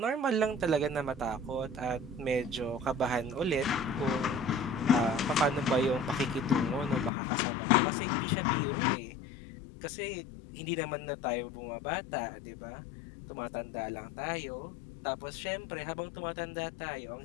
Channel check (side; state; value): right; drops out; at 7.1 s